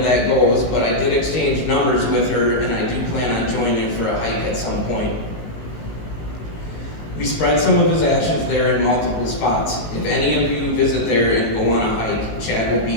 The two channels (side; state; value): right; late; 19 ms